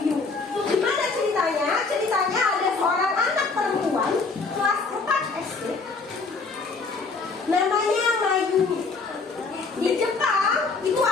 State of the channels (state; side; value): quieter; right; 4.2 dB